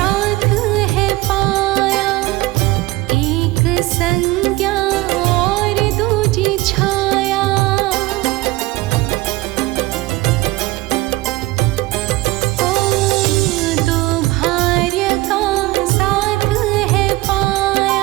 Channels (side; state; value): left; quieter; 19.9 dB